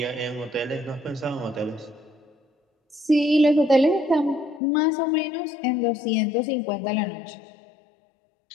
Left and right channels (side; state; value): right; drops out; at 4.6 s